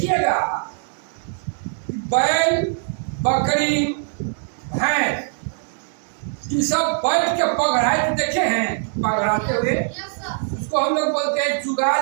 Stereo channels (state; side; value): silent; left; digital silence